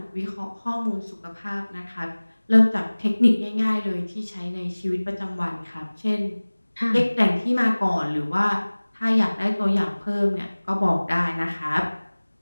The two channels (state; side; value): inverted; both; correlation -1.00